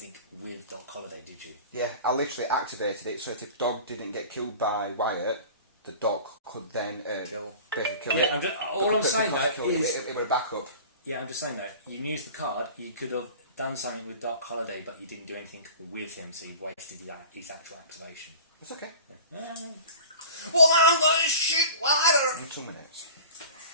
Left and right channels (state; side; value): inverted; both; correlation -0.40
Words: with Doc Holiday, did you? Yeah, I literally activated it so if the dog didn't get killed by Wyatt, the dog could then basically kill it. Yeah, all I'm saying though is it would have back up. yeah, I'm just saying though. You used the card. You could have done something with Doc Holiday, but you didn't do anything with him, so you wasted his actual activation. It's okay. Well, I'm going to shoot wider. In 2 minutes.